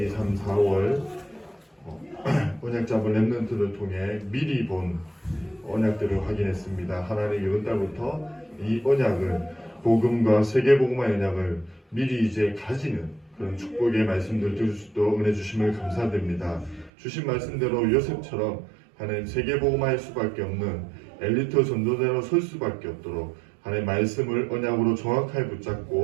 2, 3, 4월 언약 잡은 랩넌트를 통해 미리 본 언약들을 확인했습니다. 하나님 이번 달부터 이 언약을 복음과 세계복음화 언약을 미리 이제 가지는 그런 축복의 말씀들 들을 수 있도록 은혜 주심을 감사드립니다. 주신 말씀대로 요셉처럼 하나님 세계복음화할 수밖에 없는 엘리트 전도자로 설 수밖에 없도록 하나님 말씀을 언약으로 정확하게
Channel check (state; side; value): drops out; left; at 16.9 s